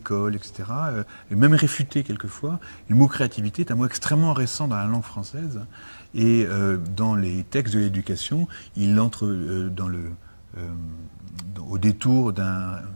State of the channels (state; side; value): inverted; both; correlation -1.00